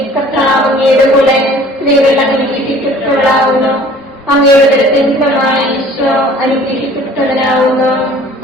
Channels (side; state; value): both; normal; correlation 0.50